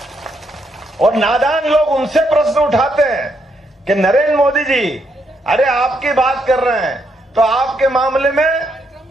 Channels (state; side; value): normal; both; correlation 0.76